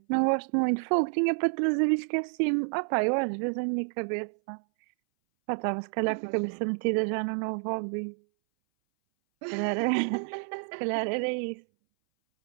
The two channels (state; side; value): silent; left; 59 dB below the other